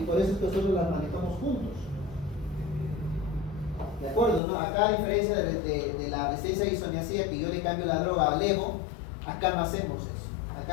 por eso es que nosotros las manejamos juntos. ¿De acuerdo? ¿No? Acá, a diferencia de la resistencia a isoniazida, que yo le cambio la droga a levo, acá no hacemos eso.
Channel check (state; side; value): drops out; right; at 4.4 s